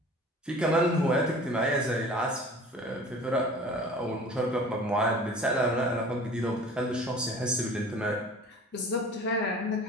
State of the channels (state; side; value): normal; both; correlation 0.44